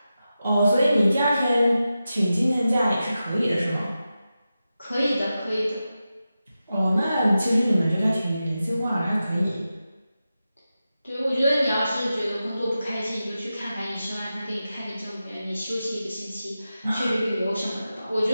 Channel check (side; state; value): both; inverted; correlation -0.92